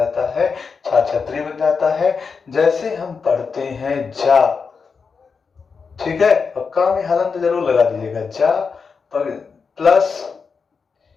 है? छा छतरी बन जाता है। जैसे हम पढ़ते हैं जा, ठीक है, और का में हलन तो जरूर लगा दीजिएगा, जा प्लस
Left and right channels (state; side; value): quieter; right; 5.3 dB